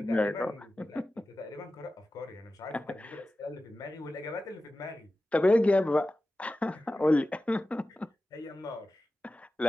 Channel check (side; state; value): both; normal; correlation 0.94